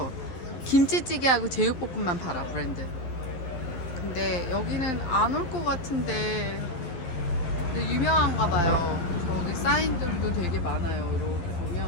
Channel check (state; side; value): late; right; 11 ms